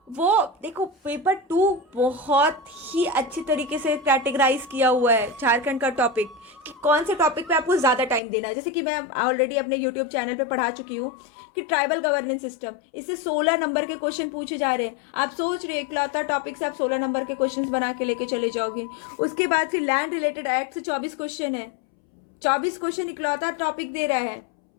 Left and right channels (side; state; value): right; drops out; at 8.2 s